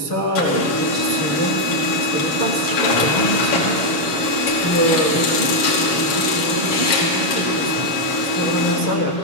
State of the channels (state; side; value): late; right; 7.2 ms